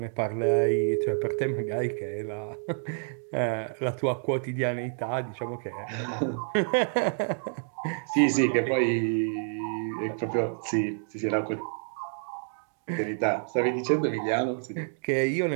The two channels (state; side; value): silent; left; digital silence